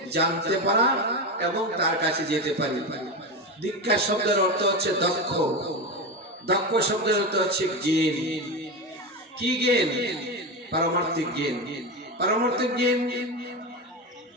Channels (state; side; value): normal; both; correlation 0.19